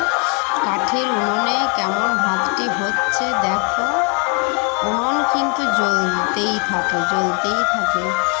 কাঠের উনুনে কেমন ভাতটি হচ্ছে দেখো। উনুন কিন্তু জ্বলতেই থাকে,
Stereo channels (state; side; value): quieter; right; 33.4 dB